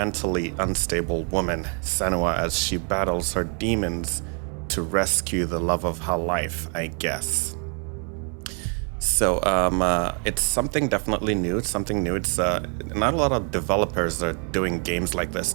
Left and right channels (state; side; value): quieter; left; 39.6 dB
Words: unstable woman, Senua, as she battles her demons to rescue the love of her life, I guess. So it's something definitely new. It's something new. It's not a lot of developers are doing games like this